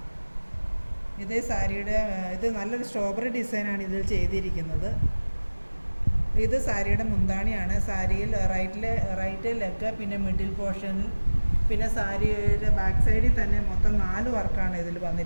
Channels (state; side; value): inverted; both; correlation -1.00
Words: ഇത് നല്ലൊരു സ്ട്രോബെറി ഡിസൈനാണ് ഇതിൽ ചെയ്തിരിക്കുന്നത്. ഇത് സാരിയുടെ മുന്താണിയാണ്. സാരിയിൽ റൈറ്റ് ലെഗ്, പിന്നെ മിഡിൽ പോർഷനിൽ, പിന്നെ സാരിയുടെ ബാക്ക് സൈഡിൽ തന്നെ മൊത്തം 4 വർക്കാണ് ഇതിൽ